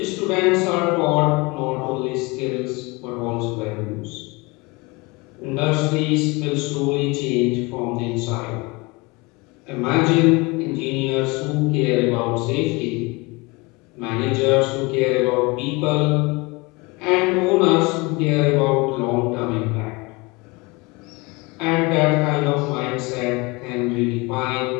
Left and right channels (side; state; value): right; quieter; 25.7 dB